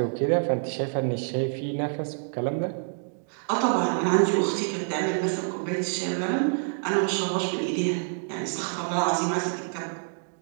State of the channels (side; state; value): left; silent; digital silence